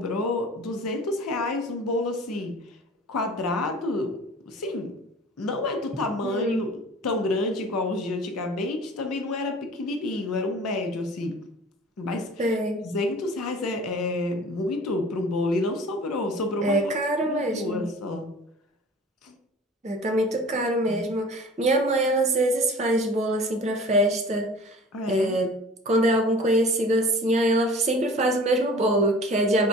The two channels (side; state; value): both; normal; correlation 0.43